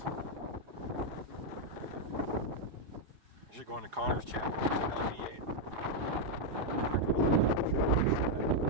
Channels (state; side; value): late; left; 4.9 ms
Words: I should go on to Connor's channel. It's an LDA.